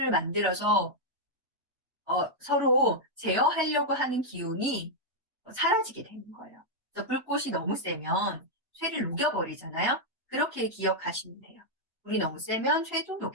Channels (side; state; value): both; normal; correlation -0.04